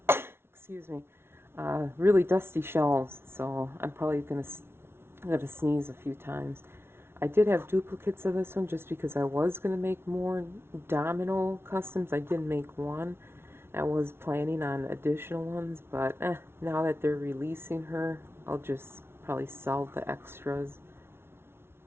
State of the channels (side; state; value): left; late; 0.12 ms